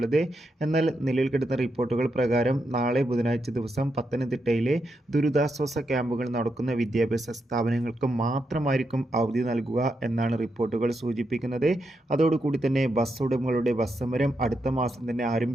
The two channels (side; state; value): both; normal; correlation 0.83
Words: എന്നാൽ നിലവിൽ കിട്ടുന്ന റിപ്പോർട്ടുകൾ പ്രകാരം നാളെ ബുധനാഴ്ച ദിവസം പത്തനംതിട്ടയിലെ ദുരിതാശ്വാസ ക്യാമ്പുകൾ നടക്കുന്ന വിദ്യാഭ്യാസ സ്ഥാപനങ്ങൾക്ക് മാത്രമായിരിക്കും അവധി നൽകുക എന്നാണ് റിപ്പോർട്ടുകൾ സൂചിപ്പിക്കുന്നത്. അതോടുകൂടി തന്നെ ബസ് ഉടമകളുടെ ബസ് സമരം അടുത്ത മാസം തന്നെ